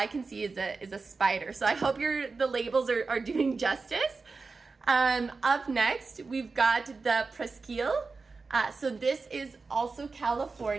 can see is a spider. So I hope the labels are doing justice. Up next, we've got the Presqu'île. So this is also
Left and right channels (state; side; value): quieter; left; 4.2 dB